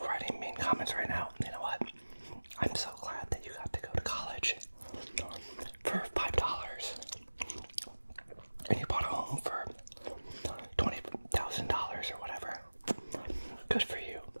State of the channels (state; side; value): inverted; both; correlation -1.00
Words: writing mean comments right now, you know what? I'm so glad that you got to go to college for $5 and you bought a home for $20,000 or whatever. Good for you.